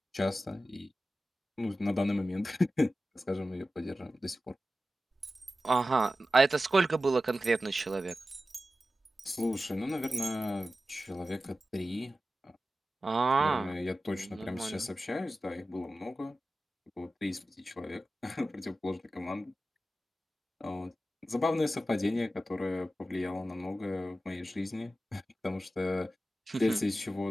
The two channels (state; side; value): normal; both; correlation 0.94